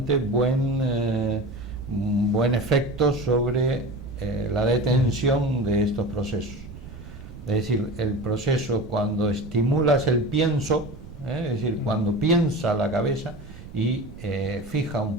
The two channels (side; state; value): right; noise; rumble, 16 dB below the sound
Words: buen efecto sobre la detención de estos procesos. Es decir, el proceso, cuando estimulas el pienso, es decir, cuando piensa la cabeza y fija un